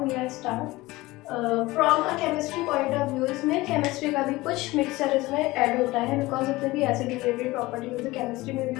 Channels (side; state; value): right; quieter; 19.9 dB